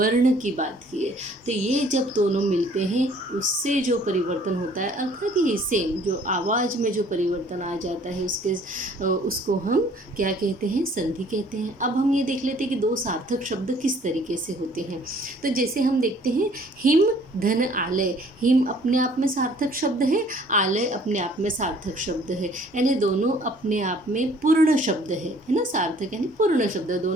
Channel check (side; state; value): both; normal; correlation 0.57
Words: की बात की है। तो ये जब दोनों मिलते हैं उससे जो परिवर्तन होता है, अर्थात ये सेम जो आवाज़ में जो परिवर्तन आ जाता है उसको हम क्या कहते हैं? संधि कहते हैं। अब हम ये देख लेते हैं कि दो सार्थक शब्द किस तरीके से होते हैं। तो जैसे हम देखते हैं हिम धन आलय। हिम अपने आप में सार्थक शब्द है, आलय अपने आप में सार्थक शब्द है, यानी दोनों अपने आप में पूर्ण शब्द है ना। सार्थक यानी पूर्ण शब्द,